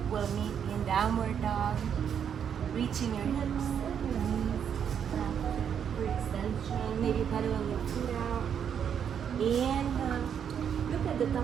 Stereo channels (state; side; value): quieter; left; 8.1 dB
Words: we'll meet in downward dog, reaching your hips and your knees for extension. Maybe pedaling your feet out. Inhale, look at the